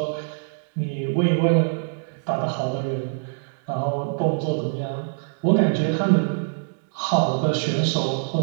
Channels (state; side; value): silent; left; digital silence